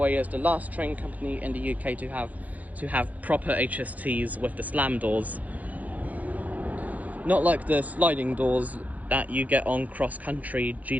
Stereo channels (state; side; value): late; left; 0.077 ms